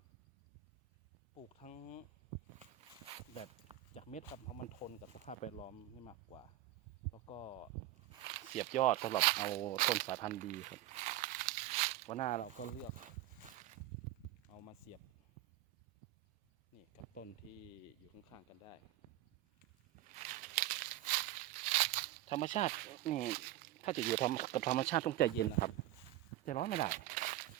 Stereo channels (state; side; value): quieter; left; 14.7 dB